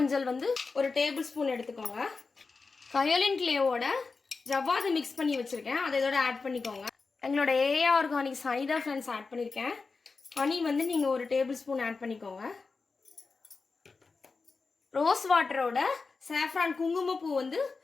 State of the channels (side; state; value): right; quieter; 4.4 dB